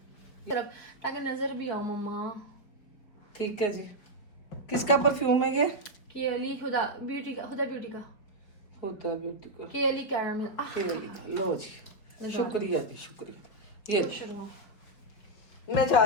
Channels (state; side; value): late; right; 4.9 ms